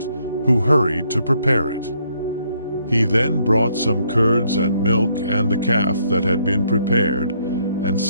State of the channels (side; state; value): both; inverted; correlation -0.71